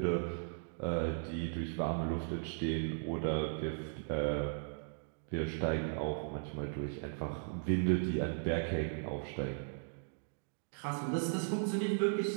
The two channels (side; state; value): left; silent; digital silence